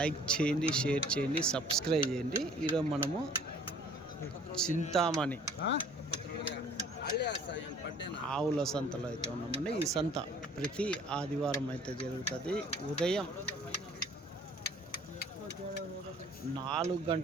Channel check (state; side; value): normal; both; correlation 0.53